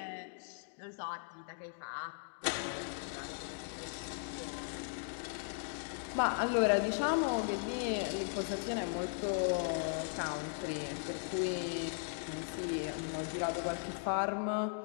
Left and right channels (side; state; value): right; silent; digital silence